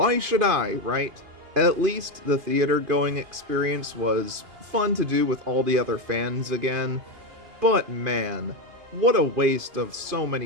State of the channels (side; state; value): left; late; 2.5 ms